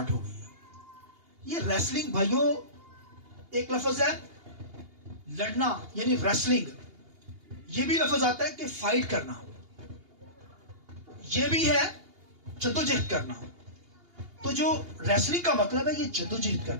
ہو گئی ہے. یہ ریسلنگ بھائیوں ایک لفظ ہے لڑنا، یعنی ریسلنگ. یہ بھی لفظ آتا ہے کہ فائٹ کرنا، یہ بھی ہے جدوجہد کرنا. تو جو ریسلنگ کا مطلب ہے یہ جدوجہد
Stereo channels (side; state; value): left; late; 2.8 ms